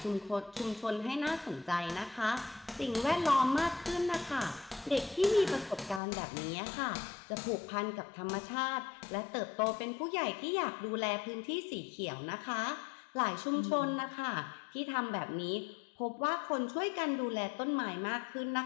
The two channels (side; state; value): right; drops out; at 6.0 s